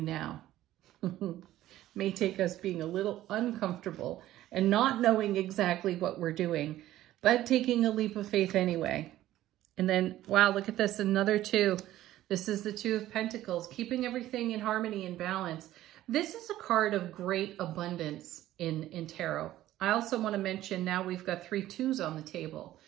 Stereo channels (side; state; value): left; quieter; 14.2 dB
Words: now? May take us being a little uncomfortable and not knowing exactly what we're doing, but taking a leap of faith anyway. And then, wow, look at this, another two. This is the Two of Pentacles, keeping everything in harmony and balance. This is a card of great abundance in tarot. I also want to mention now we've got 3 twos on the table.